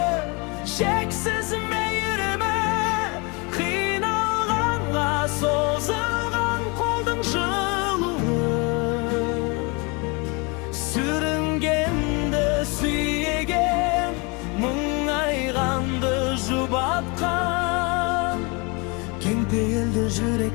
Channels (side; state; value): right; quieter; 29.8 dB